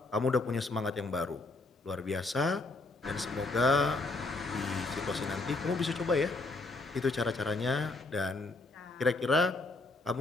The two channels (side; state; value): right; quieter; 3.2 dB